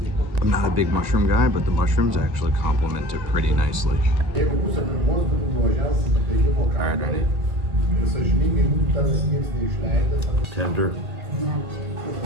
I'm not a big mushroom guy, but the mushrooms actually complement it pretty nicely. All right, ready? Tender.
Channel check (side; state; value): left; late; 1.9 ms